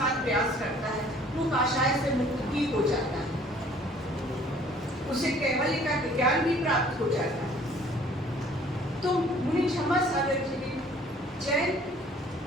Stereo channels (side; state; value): both; normal; correlation 0.56